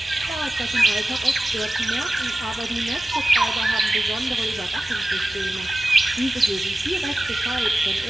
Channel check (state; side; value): normal; both; correlation 0.95